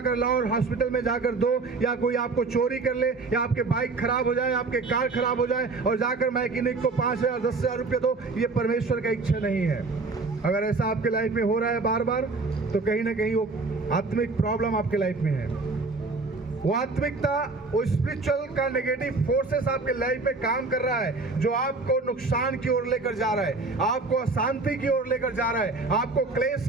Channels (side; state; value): left; quieter; 3.8 dB